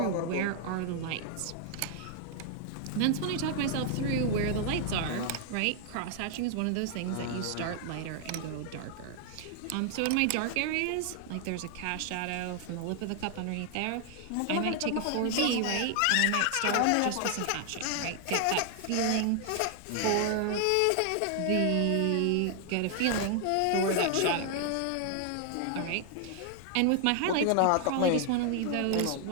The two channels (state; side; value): different; both; correlation 0.00